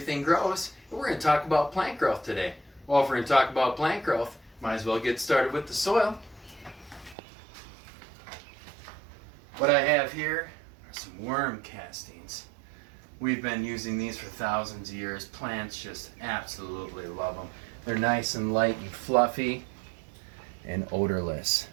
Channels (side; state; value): left; drops out; at 7.2 s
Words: Grows, and we're going to talk about plant growth today. Well, if we're going to talk about plant growth, might as well get started with the soil. What I have here are some worm castings. We've been using these for thousands of years. Plants just absolutely love them. They're nice and light and fluffy and odorless.